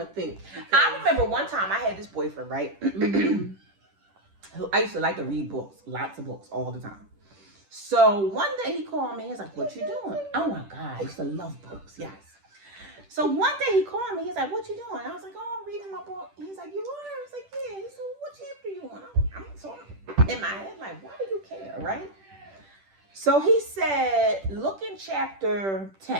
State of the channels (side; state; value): left; late; 10 ms